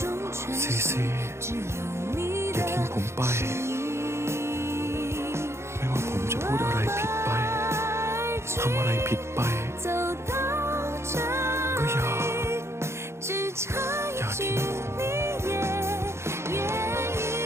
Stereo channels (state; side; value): late; left; 0.13 ms